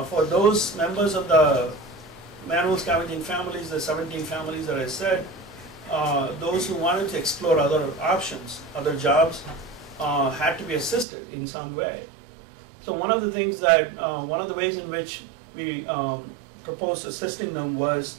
For those members of the manual scavenging families, the 17 families that I said, those who wanted to explore other options, other jobs, had to be assisted in some way. So one of the things that, one of the ways in which we proposed assisting them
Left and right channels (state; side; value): drops out; left; at 11.1 s